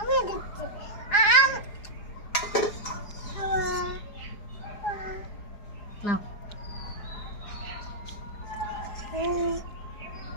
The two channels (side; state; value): right; late; 4.8 ms